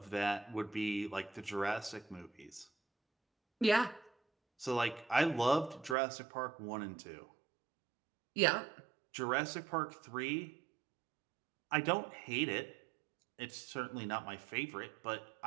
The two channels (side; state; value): left; drops out; at 6.0 s